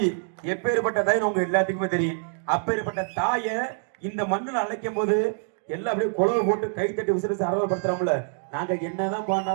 எப்பேற்பட்ட தாய் உங்க எல்லாத்துக்குமே தெரியும். அப்பேற்பட்ட தாய இந்த மண்ணுல அழைக்கும் போது எல்லாம் அப்படியே குளவை போட்டு கை தட்டி விசிறிச்சு அரவப்படுத்துறாங்கள. நாங்க என்னதான்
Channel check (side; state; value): left; silent; digital silence